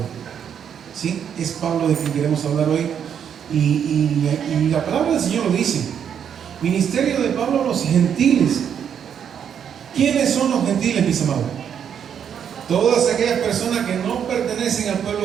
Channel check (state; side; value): quieter; left; 8.3 dB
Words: ¿Sí? Es Pablo de quien queremos hablar hoy. Y la palabra del Señor lo dice. Ministerio de Pablo a los gentiles. ¿Quiénes son los gentiles, mis amados? Todas aquellas personas que no pertenecen al